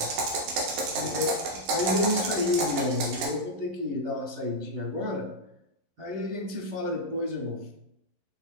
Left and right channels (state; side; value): late; left; 11 ms